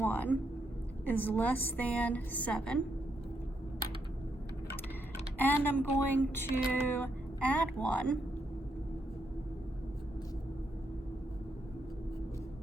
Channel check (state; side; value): normal; both; correlation 0.79